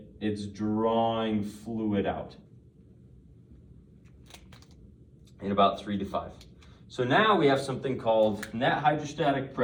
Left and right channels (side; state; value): both; identical; correlation 1.00